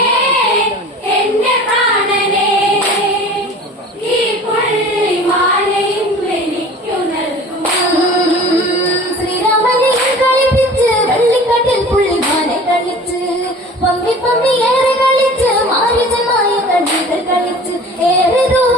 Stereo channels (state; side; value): normal; both; correlation 0.42